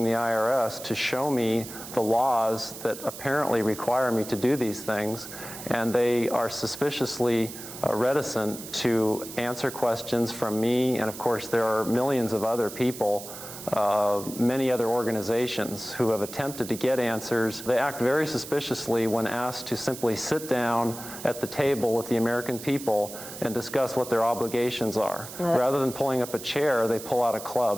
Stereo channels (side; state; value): right; noise; hiss, 12 dB below the sound